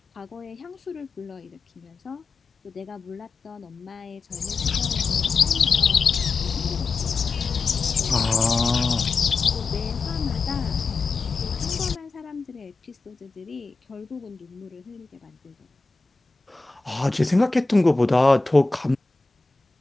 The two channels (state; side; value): quieter; right; 4.1 dB